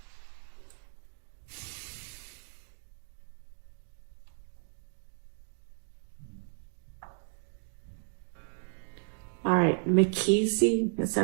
All right, McKessie, is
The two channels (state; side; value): silent; left; 55 dB below the other